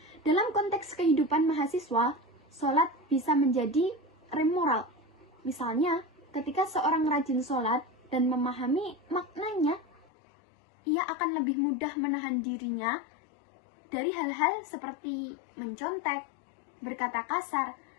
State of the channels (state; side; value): drops out; right; at 10.1 s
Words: Dalam konteks kehidupan mahasiswa, sholat bisa menjadi rem moral. Misalnya, ketika seorang rajin sholat dan memahami maknanya, ia akan lebih mudah menahan dirinya dari hal-hal seperti mencontek, berkata kasar,